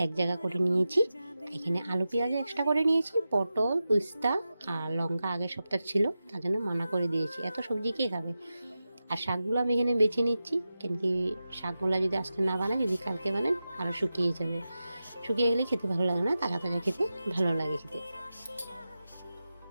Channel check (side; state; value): both; inverted; correlation -0.93